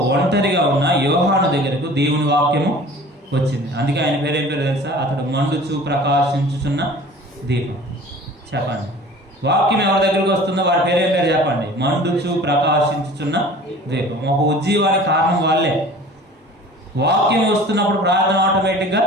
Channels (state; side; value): normal; both; correlation 0.44